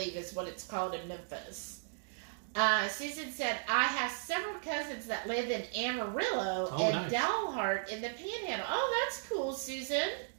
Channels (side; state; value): left; silent; digital silence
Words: is what it's called in Memphis. Susan said, I have several cousins that live in Amarillo and nice. Dalhart in the Panhandle. Oh, that's cool, Susan.